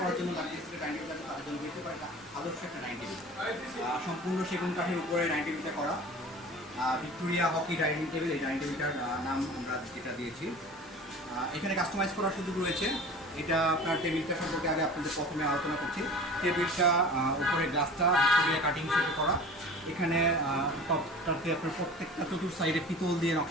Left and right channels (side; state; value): both; normal; correlation 0.40